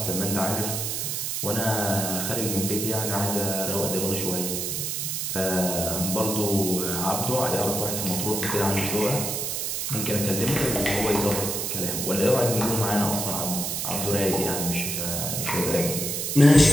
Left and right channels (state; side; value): noise; right; hiss, 2 dB below the sound